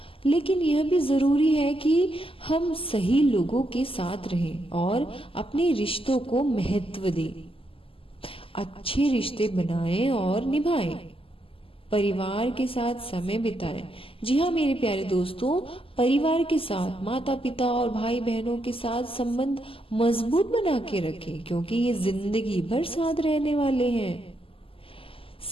लेकिन यह भी जरूरी है कि हम सही लोगों के साथ रहें और अपने रिश्तों को महत्व दें। अच्छे रिश्ते बनाएं और निभाएं, परिवार के साथ समय बिताएं। जी हाँ मेरे प्यारे दोस्तों, परिवार के साथ, माता पिता और भाई बहनों के साथ संबंध मजबूत बना के रखें क्योंकि ये जिंदगी भर साथ रहने वाले हैं।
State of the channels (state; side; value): late; right; 0.26 ms